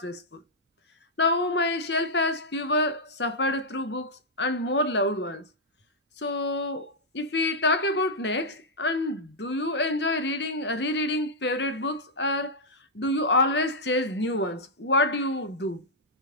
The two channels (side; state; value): both; normal; correlation -0.06